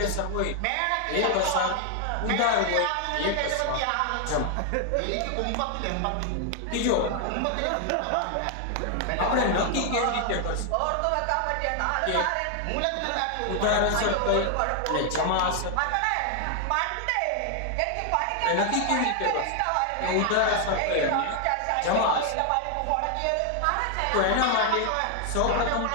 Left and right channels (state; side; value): different; both; correlation 0.00